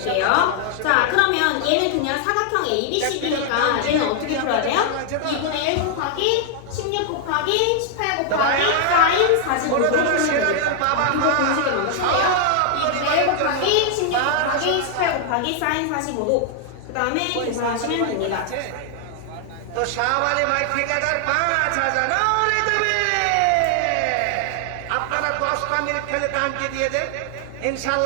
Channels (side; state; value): both; different; correlation 0.00